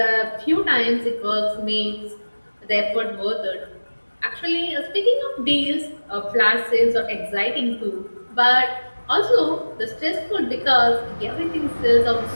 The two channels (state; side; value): inverted; both; correlation -1.00